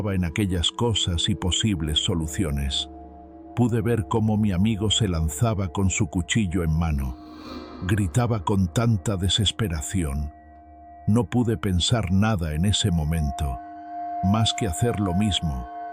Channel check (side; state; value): both; identical; correlation 1.00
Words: en aquellas cosas y posibles soluciones, pude ver cómo mi amigo se lanzaba con su cuchillo en mano. Gritaba con tanta desesperación. No pude pensar nada en ese momento, más que hacer lo mismo,